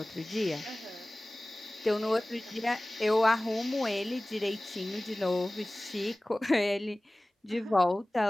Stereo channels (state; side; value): normal; both; correlation 0.98